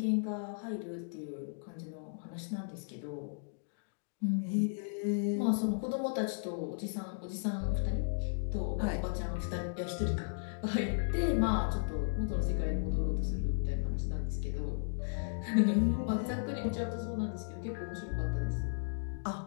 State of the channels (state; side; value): silent; right; digital silence